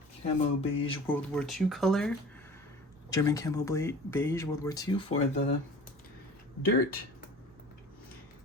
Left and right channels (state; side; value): normal; both; correlation 0.41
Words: camo beige World War II color, German camo beige World War II for the dirt.